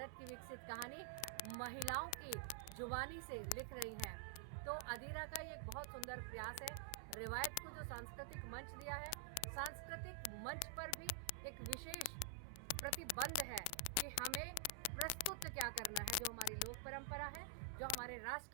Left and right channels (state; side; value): different; both; correlation 0.00